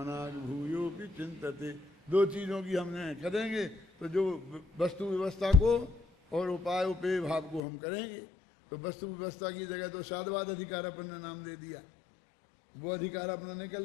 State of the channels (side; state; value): right; drops out; at 7.6 s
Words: भूयोपि चिंतते। दो चीजों की हमने करेंगे तो जो वस्तु व्यवस्था को और उपाय उपेय भाव को हम करेंगे। तो वस्तु व्यवस्था की जगह तो साधवाद अधिकार अपन ने नाम दे दिया, वो अधिकार अपना निकल